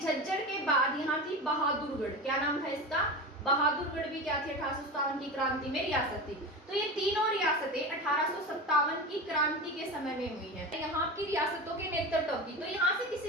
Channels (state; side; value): normal; both; correlation 0.26